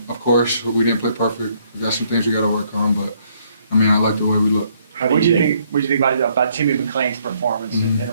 Of course, we didn't play perfect. We got some things we got to work on, but I mean, I like the way we look. What do you think about Timmy McClain's performance in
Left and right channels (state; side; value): inverted; both; correlation -0.68